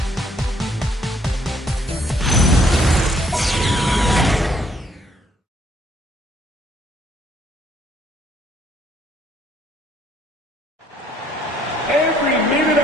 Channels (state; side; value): normal; both; correlation 0.67